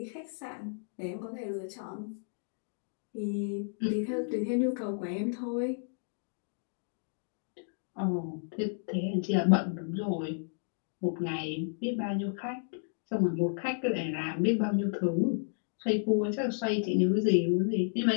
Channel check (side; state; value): right; silent; digital silence